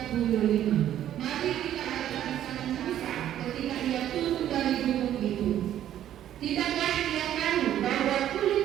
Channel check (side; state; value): left; quieter; 11.4 dB